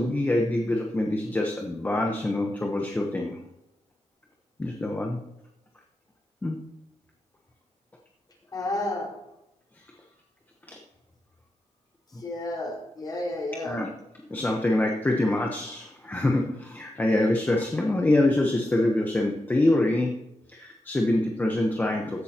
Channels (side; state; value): both; normal; correlation 0.89